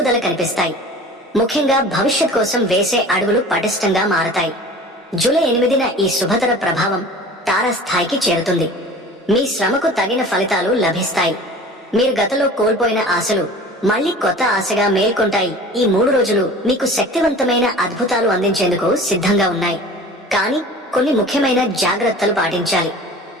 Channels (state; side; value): normal; both; correlation 0.41